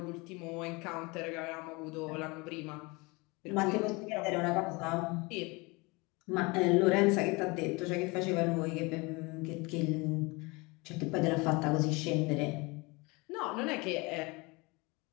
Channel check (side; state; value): right; quieter; 26.1 dB